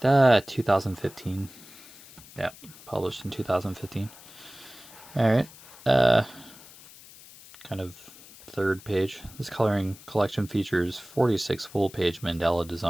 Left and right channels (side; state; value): left; noise; hiss, 20 dB below the sound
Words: right. 2015. Yeah, published in 2015. Alright. Kind of third page. This coloring collection features 46 full-page Mandela